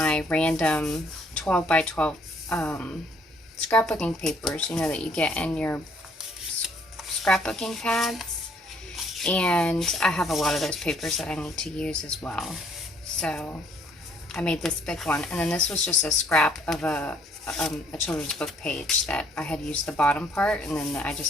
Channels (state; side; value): normal; both; correlation 0.64